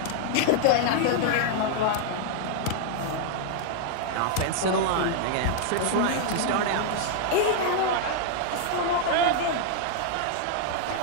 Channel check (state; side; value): different; both; correlation -0.01